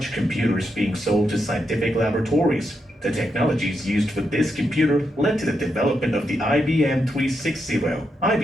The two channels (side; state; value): both; normal; correlation 0.83